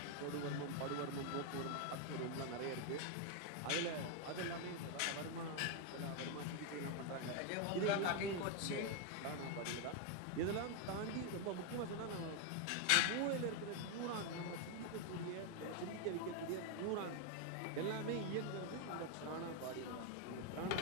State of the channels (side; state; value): both; different; correlation 0.01